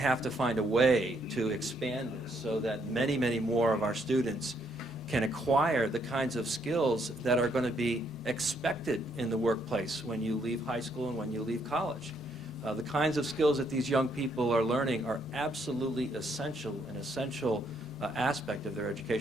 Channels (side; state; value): both; normal; correlation 0.72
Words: to find a way to expand this so that many, many more of our students can acquire the kinds of skills that are going to be expected in the workplace when you leave high school and when you leave college. The kinds of skills that these young people are learning are absolutely essential, an essential aspect of their